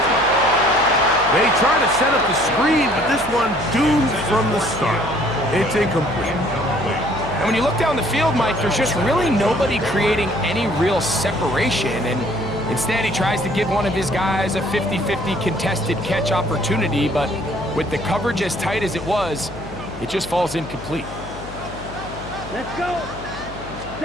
They try to set up the screen, but this one doomed from the start. It's incomplete. And when you look down the field, Mike, there's just really nobody creating any real separation, and instead, he tries to give one of his guys a 50-50 contested catch opportunity, but with the coverage as tight as it was, it just falls incomplete. Let's go.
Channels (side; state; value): left; noise; hum, 13 dB below the sound